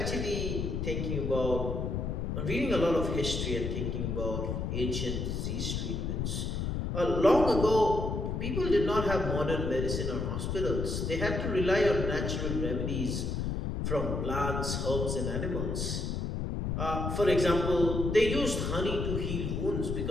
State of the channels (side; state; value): left; noise; rumble, 2 dB below the sound